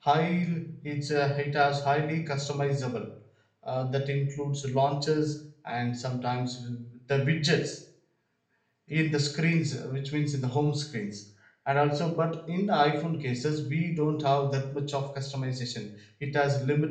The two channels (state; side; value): identical; both; correlation 1.00